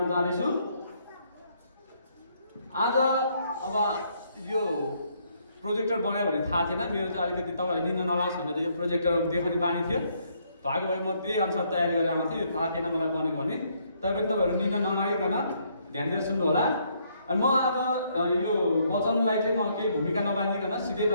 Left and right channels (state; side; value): inverted; both; correlation -0.70